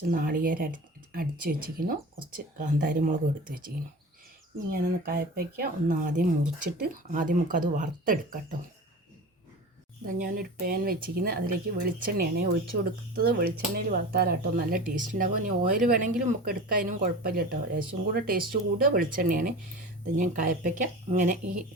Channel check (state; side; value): normal; both; correlation 0.34